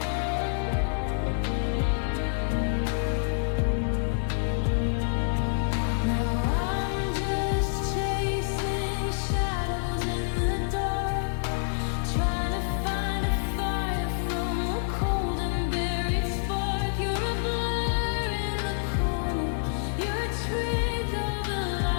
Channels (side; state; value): right; silent; 55 dB below the other